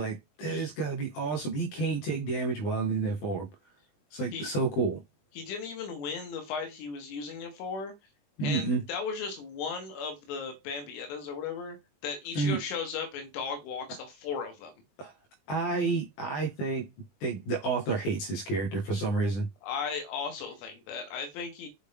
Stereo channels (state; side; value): late; right; 20 ms